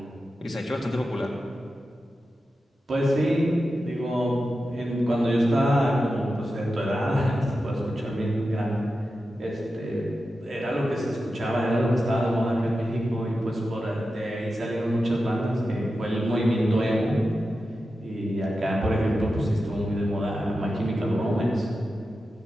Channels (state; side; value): normal; both; correlation 0.91